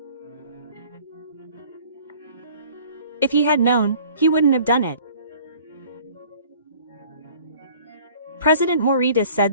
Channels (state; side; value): inverted; both; correlation -0.51